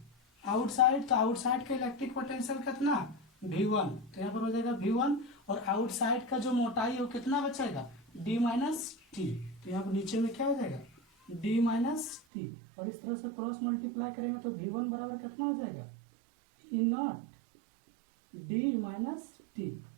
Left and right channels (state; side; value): drops out; left; at 12.2 s